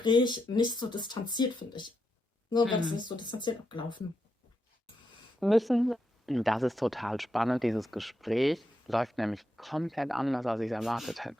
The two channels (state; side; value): normal; both; correlation 0.83